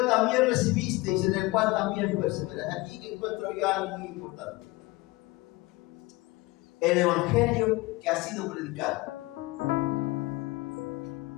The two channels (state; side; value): quieter; right; 21.7 dB